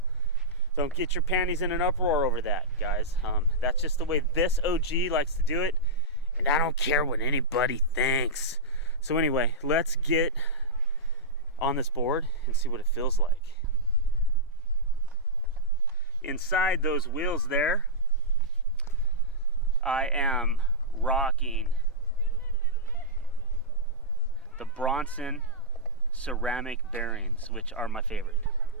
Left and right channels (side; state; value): both; normal; correlation -0.13